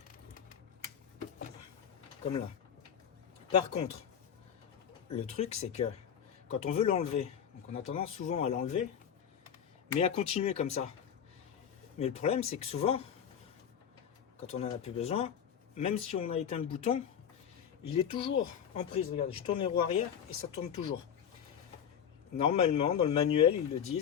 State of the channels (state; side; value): quieter; right; 8.4 dB